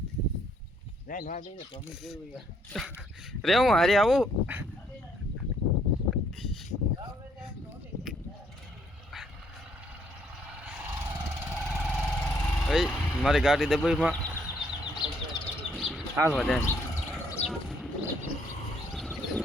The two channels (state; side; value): normal; both; correlation 0.69